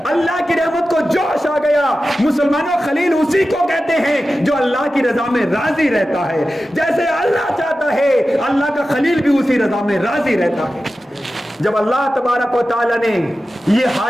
اللہ کی رحمت کو جوش آ گیا. مسلمانوں خلیل اسی کو کہتے ہیں جو اللہ کی رضا میں راضی رہتا ہے. جیسے اللہ چاہتا ہے اللہ کا خلیل بھی اسی رضا میں راضی رہتا ہے. جب اللہ تبارک و تعالیٰ نے یہ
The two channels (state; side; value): normal; both; correlation 0.94